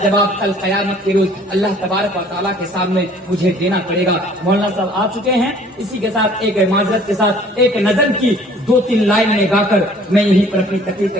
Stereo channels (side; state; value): both; normal; correlation 0.54